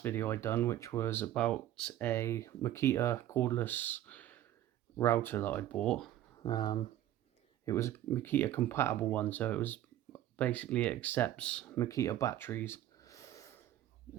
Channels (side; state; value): left; quieter; 12.9 dB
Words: video I done, which was about a Makita cordless router that I bought. It was a Makita compatible one, so it accepts Makita batteries,